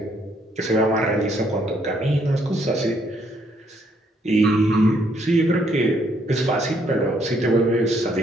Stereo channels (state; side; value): normal; both; correlation 0.70